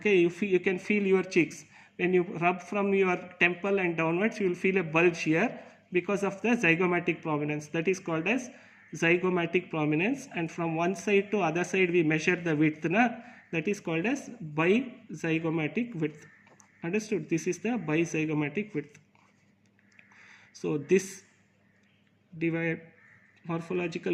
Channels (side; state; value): both; identical; correlation 1.00